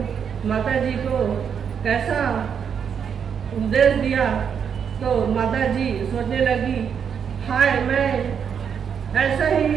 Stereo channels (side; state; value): left; quieter; 7.4 dB